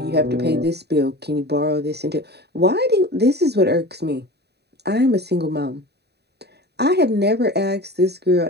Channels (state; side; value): late; left; 0.48 ms